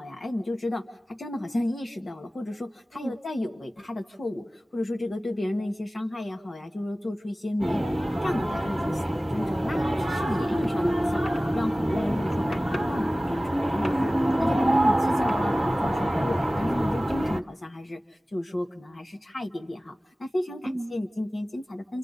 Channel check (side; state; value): both; normal; correlation 0.97